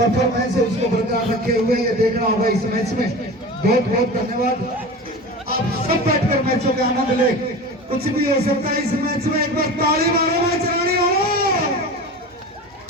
है उसको बरकरार रखे हुए ये देखना होगा इस मैच में। बहुत बहुत धन्यवाद। आप सब बैठकर मैचों के आनंद ले, कुछ भी हो सकता है इस मैच में। एक बार ताली मारो मैच रानी हो।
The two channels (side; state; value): both; normal; correlation 0.33